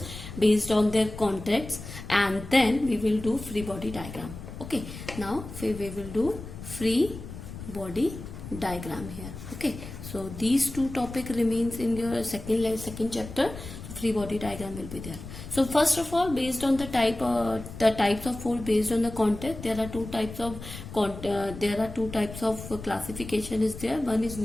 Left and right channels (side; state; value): left; noise; rumble, 12 dB below the sound